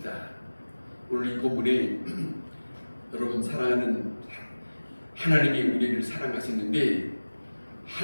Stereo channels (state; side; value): inverted; both; correlation -1.00